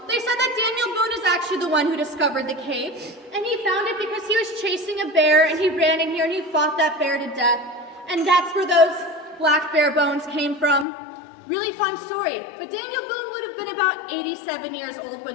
they said that Daniel Boone is actually the one who discovered the cave, and he found it because he was chasing a bear, and he ran in here and he fought that bear to death, and that's where those black bear bones came from. Really fun story, but Daniel Boone would have been about 87 years old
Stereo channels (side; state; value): right; drops out; at 10.9 s